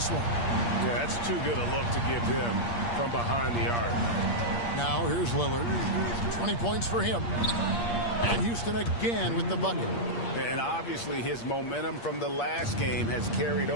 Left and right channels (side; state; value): right; late; 8.5 ms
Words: one. Yeah, that's too good a look to give him from behind the arc. Now here's Lillard. 20 points for him. And Houston again with the bucket. And obviously his momentum from the last game has carried